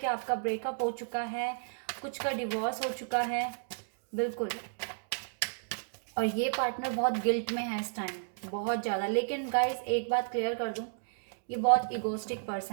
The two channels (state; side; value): silent; left; digital silence